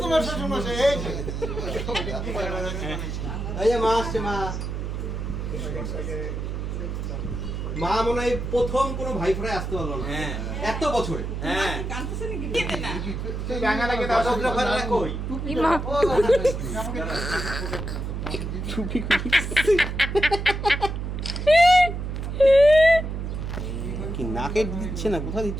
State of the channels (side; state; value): right; noise; hum, 4 dB below the sound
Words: তোমার শ্বশুর মশাই এই যে এই যে মা আসছে মা। মা মনে হয় প্রথম কোনো ভাই ফোনে আসতে পারলো না এত বছরে। হ্যাঁ কই কি নাকে দিচ্ছে না, কোথায়